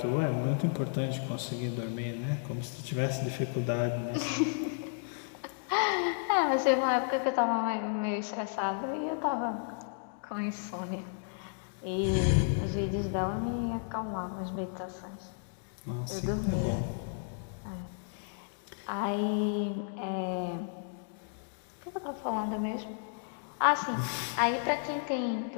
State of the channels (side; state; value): right; silent; digital silence